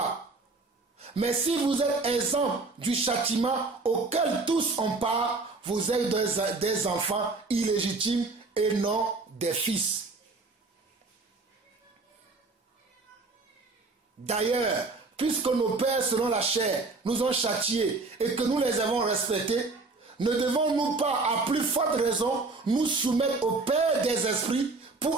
Mais si vous êtes exempt du châtiment auquel tous ont part, vous êtes des enfants illégitimes et non des fils. D'ailleurs, puisque nos pères selon la chair nous ont châtiés et que nous les avons respectés, ne devons-nous pas à plus forte raison nous soumettre au Père des esprits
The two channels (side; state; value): left; quieter; 3.7 dB